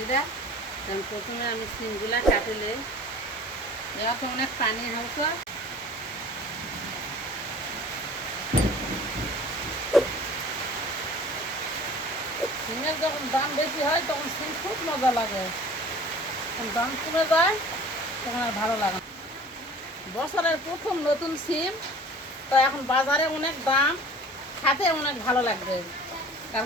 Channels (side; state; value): both; normal; correlation 0.45